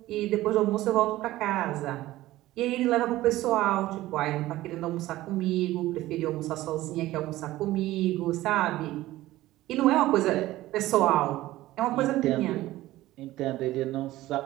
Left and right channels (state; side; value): quieter; left; 16.4 dB